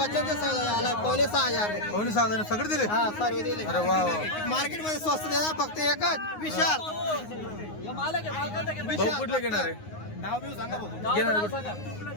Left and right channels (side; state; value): right; late; 9.6 ms